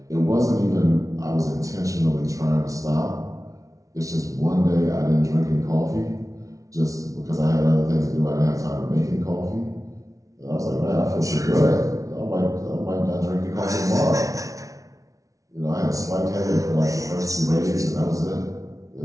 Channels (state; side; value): late; left; 0.17 ms